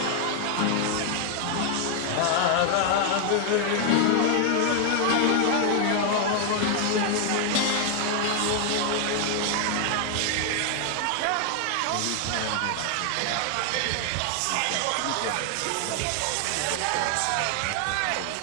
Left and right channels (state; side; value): different; both; correlation 0.00